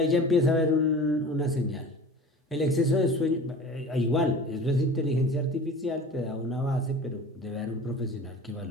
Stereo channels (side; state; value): both; normal; correlation 0.39